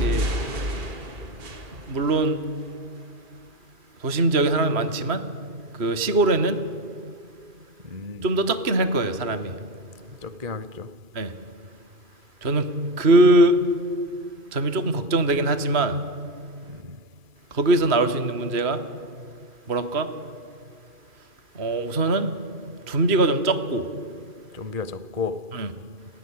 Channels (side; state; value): left; late; 2.4 ms